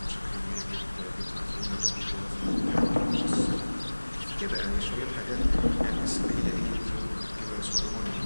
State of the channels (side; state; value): both; inverted; correlation -1.00